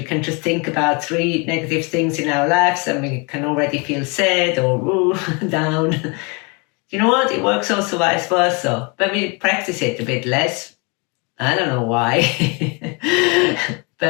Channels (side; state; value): right; quieter; 31.3 dB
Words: can just think about 3 negative things in our lives and we can already feel sad or down. You know what? It works also vice versa. When we practice it a bit less, I don't know why,